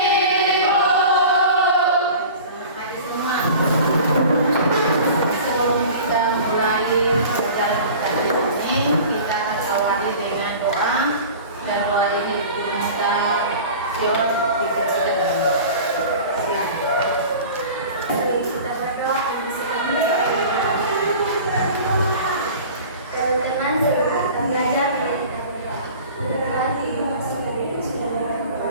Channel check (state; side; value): inverted; both; correlation -0.40